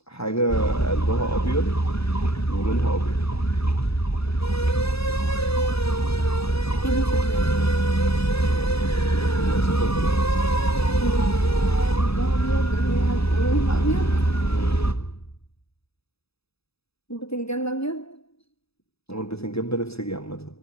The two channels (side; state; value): right; late; 0.78 ms